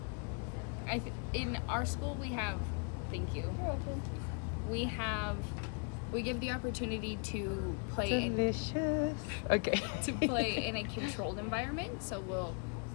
In our school, we have. Thank you. You're welcome. We give the opportunity to play Delicious. Okay. to play in a controlled environment. So we'll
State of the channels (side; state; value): right; quieter; 39.0 dB